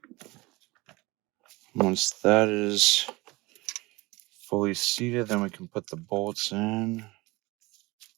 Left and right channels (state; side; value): quieter; left; 22.5 dB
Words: Once that is fully seated, then we can put the bolts in.